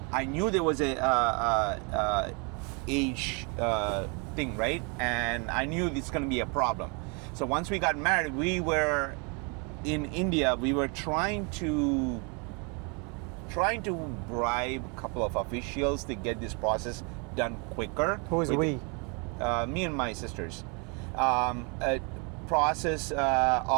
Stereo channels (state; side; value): quieter; left; 33.8 dB